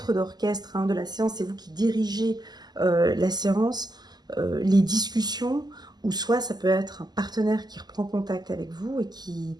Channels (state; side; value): late; left; 0.20 ms